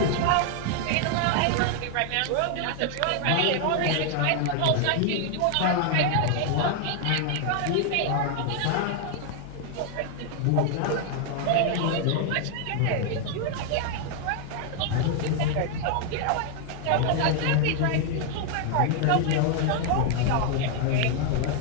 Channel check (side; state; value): both; different; correlation 0.00